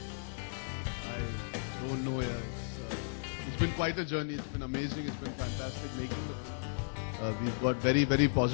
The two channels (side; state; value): right; silent; digital silence